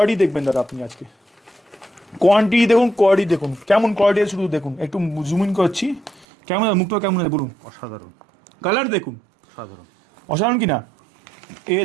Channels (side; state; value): left; drops out; at 6.2 s